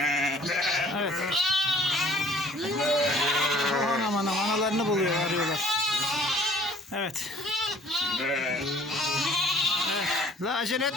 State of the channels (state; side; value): normal; both; correlation 0.55